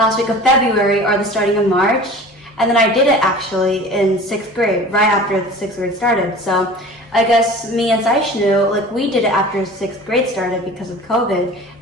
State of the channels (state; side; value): normal; both; correlation 0.41